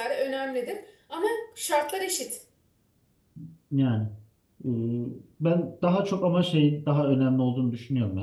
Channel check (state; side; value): identical; both; correlation 1.00